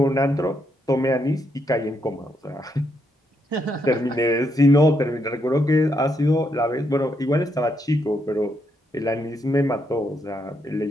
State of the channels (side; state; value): both; normal; correlation 0.78